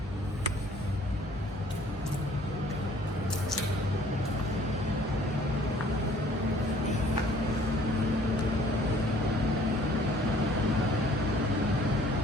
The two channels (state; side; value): normal; both; correlation 0.56